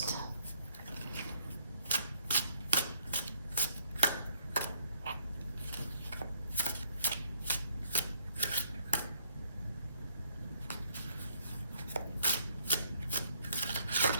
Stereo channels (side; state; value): both; inverted; correlation -0.65